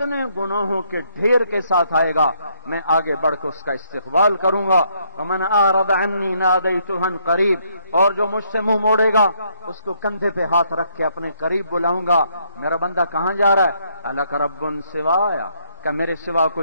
گناہوں کے ڈھیر کے ساتھ آئے گا میں آگے بڑھ کے اس کا استقبال کروں گا۔ ومن اعرض عنی نادیتہ قریب، اور جو مجھ سے منہ موڑے گا اس کو کندھے پہ ہاتھ رکھ کے اپنے قریب بلاؤں گا۔ میرا بندہ کہاں جا رہا ہے؟ الک رب سوایا، کہ میرے سوا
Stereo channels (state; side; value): inverted; both; correlation -0.71